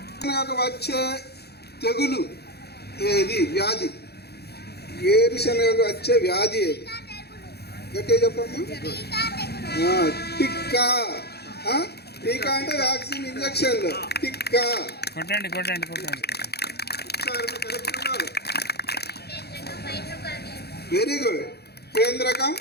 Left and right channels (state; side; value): late; right; 0.47 ms